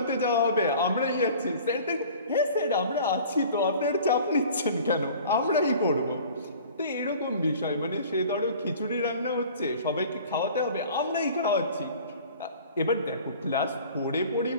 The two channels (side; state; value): both; inverted; correlation -0.46